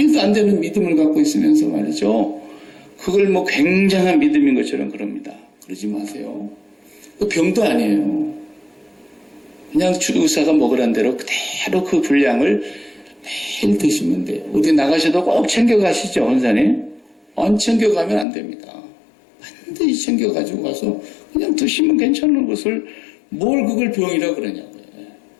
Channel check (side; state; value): right; drops out; at 18.2 s